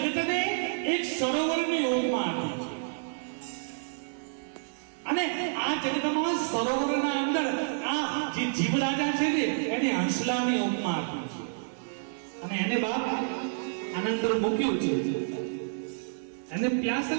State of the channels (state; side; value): silent; left; 58 dB below the other